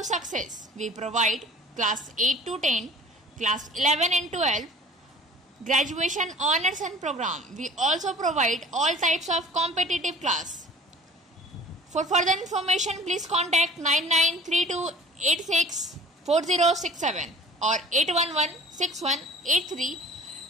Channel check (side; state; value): both; normal; correlation 0.46